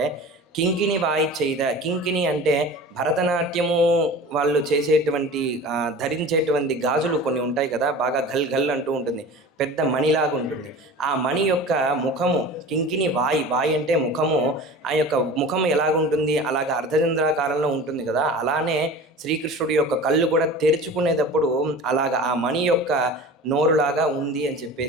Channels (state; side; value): normal; both; correlation 0.37